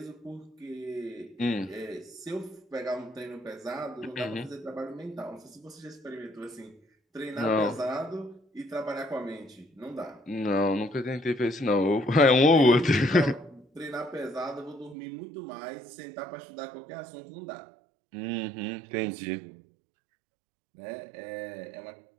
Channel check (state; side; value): drops out; left; at 15.0 s